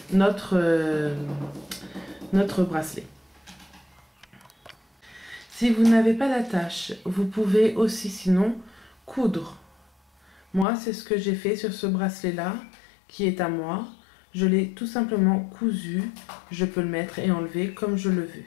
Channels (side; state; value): right; drops out; at 10.7 s